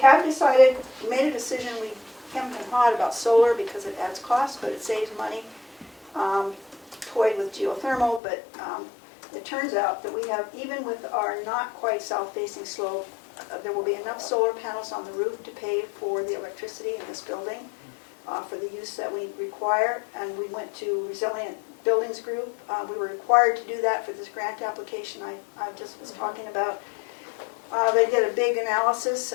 decided, we made a decision, we hemmed and hawed about solar because it adds cost, but it saves money. Toyed with geothermal, but it turns out that we have, even with our not quite south-facing slope, there will be enough solar panels on the roof to pay for the electricity in this building for the use that we require. And we went to Resilient Buildings Group. We were required to do that for this grant application I just was talking about. They did a big analysis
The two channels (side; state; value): right; drops out; at 8.2 s